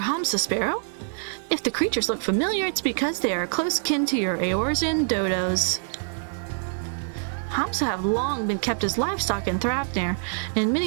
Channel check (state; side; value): silent; left; digital silence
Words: Hamsa, Sparrow. If the creatures look familiar, it's because they are close kin to your Eorzean dodos. Hamsa have long been kept as livestock in Thrapnir, and